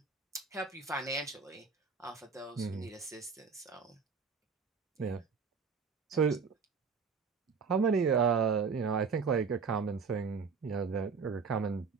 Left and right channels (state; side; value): quieter; left; 5.5 dB